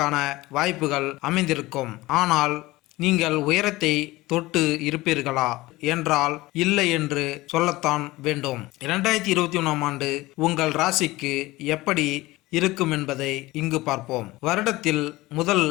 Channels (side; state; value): right; quieter; 19.4 dB